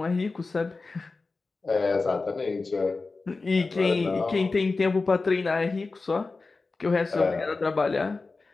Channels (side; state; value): right; quieter; 3.8 dB